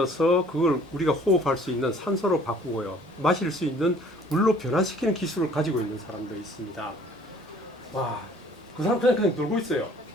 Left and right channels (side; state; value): both; normal; correlation 0.55